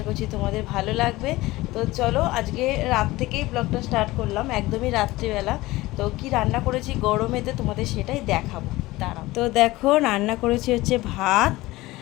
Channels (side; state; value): right; quieter; 19.0 dB